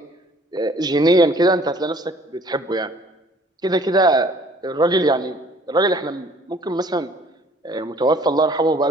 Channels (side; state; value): both; normal; correlation 0.55